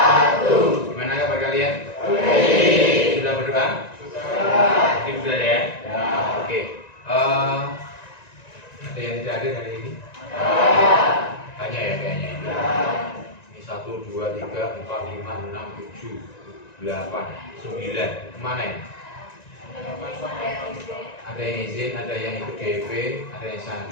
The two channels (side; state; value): right; late; 1.9 ms